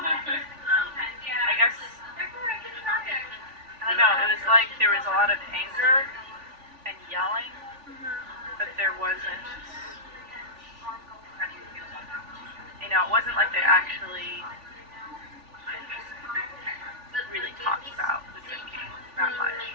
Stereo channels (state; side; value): late; left; 3.4 ms